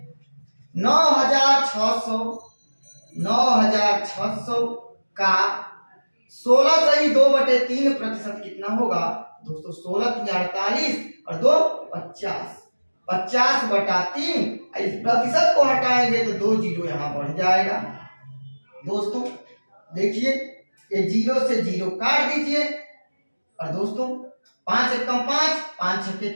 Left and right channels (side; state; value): both; inverted; correlation -1.00